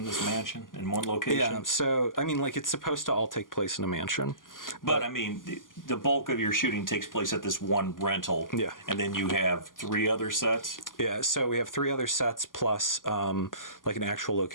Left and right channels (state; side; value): late; right; 0.89 ms